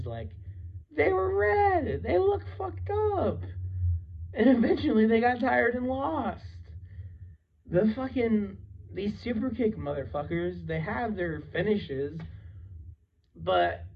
like, they were red, they looked fucked up, and eventually they got tired and lost. these super kick motherfuckers, they have their finishes, but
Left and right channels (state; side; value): identical; both; correlation 1.00